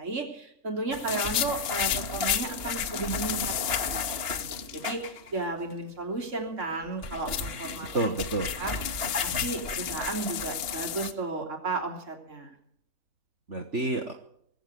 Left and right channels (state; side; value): late; left; 2.9 ms